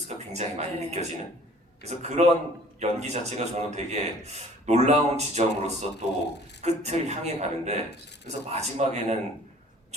굉장히 많이 네. 느껴지는 그래서 그런 연기 자체가 저는 되게 놀라운 지점으로서 또 끝을 향해 가는데 그래서 마지막에는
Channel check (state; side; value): normal; both; correlation 0.52